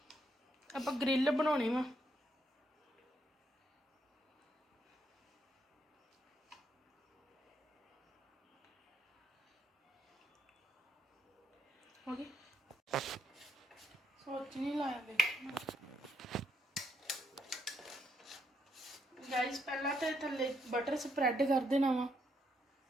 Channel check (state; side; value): normal; both; correlation 0.76